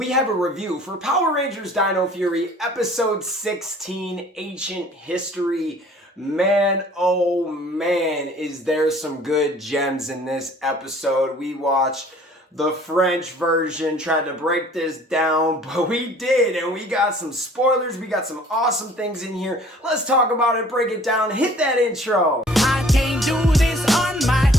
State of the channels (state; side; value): normal; both; correlation 0.53